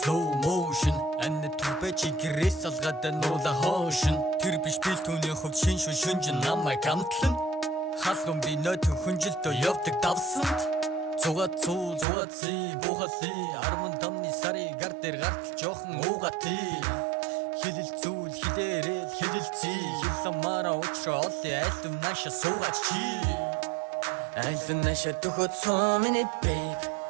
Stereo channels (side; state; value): left; drops out; at 12.1 s